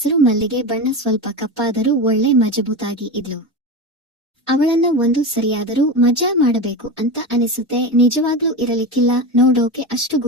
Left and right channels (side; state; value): both; normal; correlation 0.22